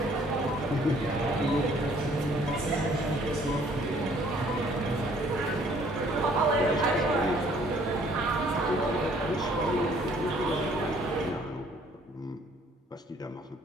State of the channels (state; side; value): normal; both; correlation 0.60